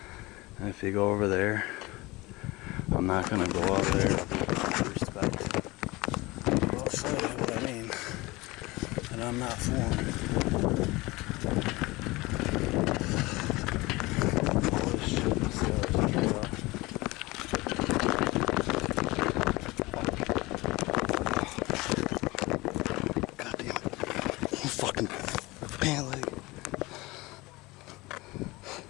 and if you go over there, I'm not going to go out there, I'll be respect. I'll show you what I mean, and I'm not fooling. All this shit is straight up. Goddamn fucking pant leg.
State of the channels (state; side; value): quieter; right; 21.9 dB